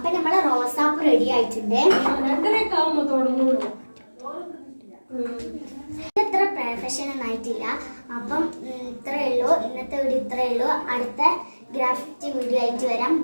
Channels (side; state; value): both; inverted; correlation -1.00